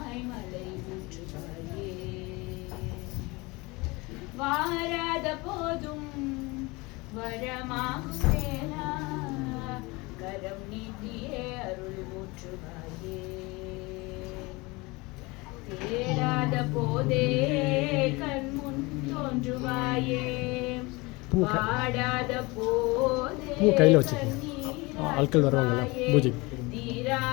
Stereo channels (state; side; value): quieter; right; 24.3 dB